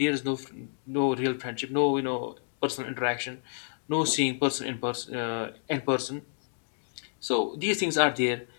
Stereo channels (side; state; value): right; silent; digital silence